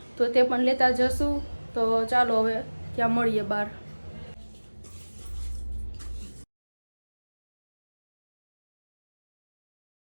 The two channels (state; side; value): inverted; both; correlation -1.00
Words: તો તે પણ લેતા જશું. તો ચાલો હવે ત્યાં મળીએ બહાર.